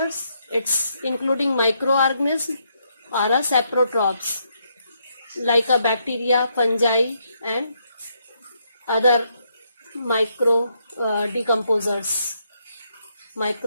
it's including microorganisms are a saprotrophs like a bacteria, fungi and other decomposers,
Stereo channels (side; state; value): both; inverted; correlation -0.76